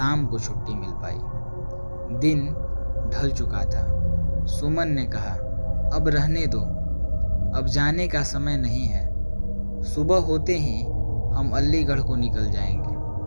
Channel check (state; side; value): inverted; both; correlation -1.00